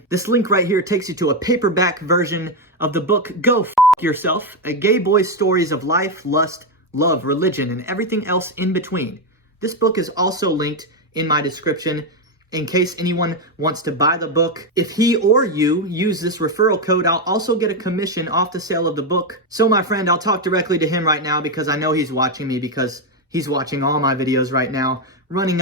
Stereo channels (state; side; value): normal; both; correlation 0.07